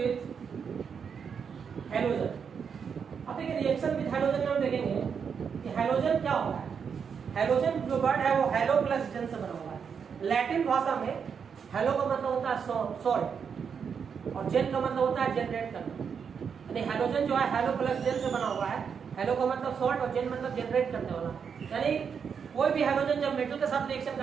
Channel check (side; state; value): left; quieter; 6.7 dB